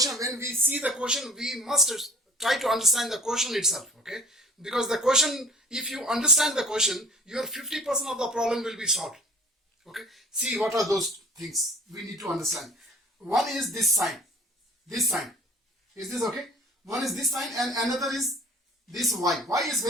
when we see the question, we must try to understand the question itself, okay? Because the question, if you understand the question, your 50% of the problem will be solved. Okay? See what are those things we need to understand. One is this sign. This sign. Is this okay? One is this sign and another is this y. Y is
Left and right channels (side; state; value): both; normal; correlation 0.47